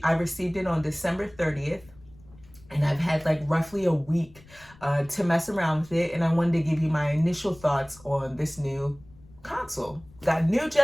it on December 30th. And I've had like roughly a week to mess around with it, and I wanted to give you my initial thoughts on this new console. Got new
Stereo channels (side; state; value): left; noise; rumble, 24 dB below the sound